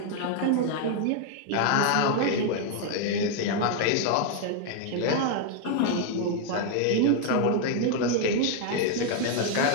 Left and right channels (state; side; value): different; both; correlation 0.00